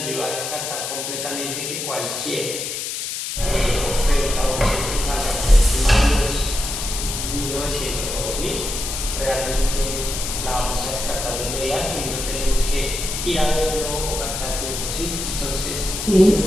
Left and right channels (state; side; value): noise; left; hiss, 4 dB below the sound